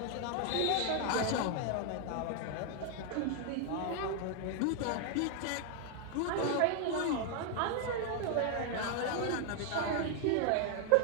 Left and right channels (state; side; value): different; both; correlation 0.00